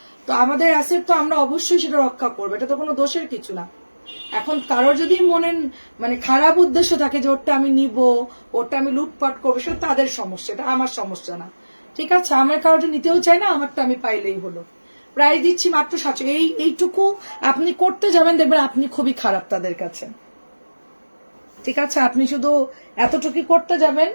তো আমাদের অ্যাসেট তো আমরা অবশ্যই সেটা রক্ষা করবো, এটা তো কোনো দোষের কিছু না। এখন কারোর যদি মনে মানে খারাপ উদ্দেশ্য থাকে যে ওটা আমি নিব, ওটা আমি লুটপাট করবো, সেটা তাদের সমস্যা, এটা আমার সমস্যা না। ঠিক আছে, আমার কারোটা নিতেও চাই না, আমারটা আমি পাইলেই হলো। প্রায় দিচ্ছি মাত্র 700। এইটুকু আপনি করতে যাবেন, দেখবেন আপনি খুবই খারাপ তাদের কাছে। ঠিক আছে, আপনি শুধু এতটুকু করতে যাবেন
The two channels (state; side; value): inverted; both; correlation -1.00